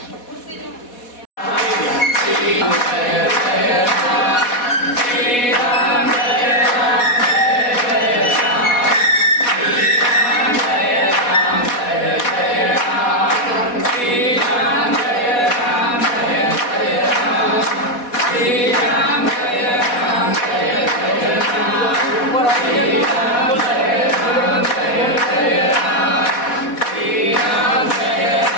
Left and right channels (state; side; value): late; right; 4.1 ms